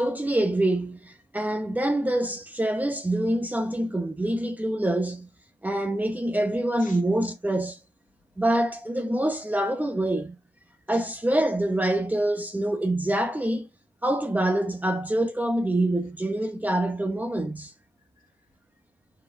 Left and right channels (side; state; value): both; normal; correlation 0.90